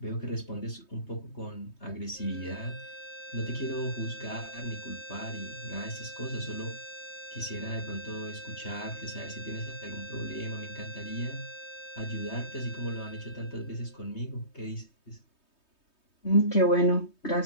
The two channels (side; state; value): right; late; 3.2 ms